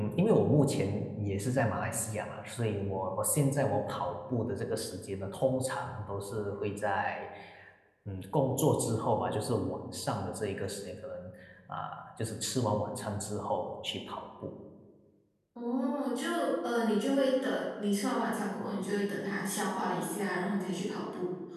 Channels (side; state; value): both; identical; correlation 1.00